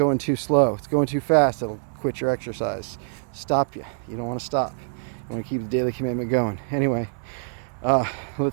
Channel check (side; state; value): left; silent; digital silence